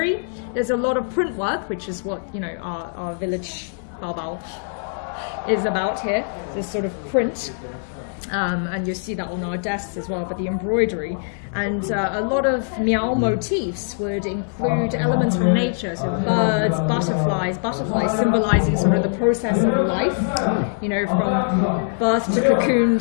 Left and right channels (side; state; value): right; silent; 64 dB below the other